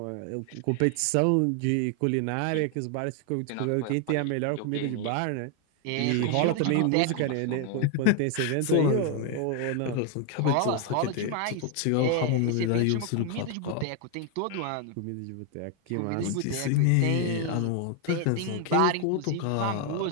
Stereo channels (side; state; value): both; different; correlation 0.01